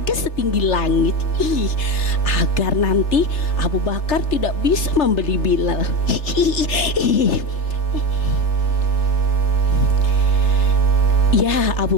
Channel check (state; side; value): late; right; 3.3 ms